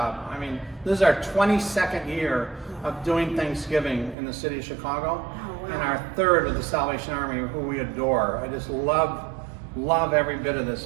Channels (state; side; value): drops out; left; at 4.2 s